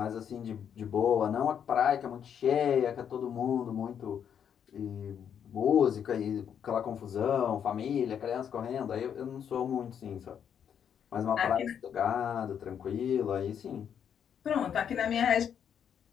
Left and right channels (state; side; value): quieter; right; 8.4 dB